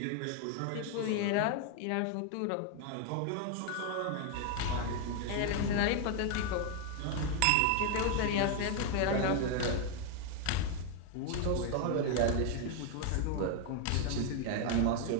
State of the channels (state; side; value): different; both; correlation 0.01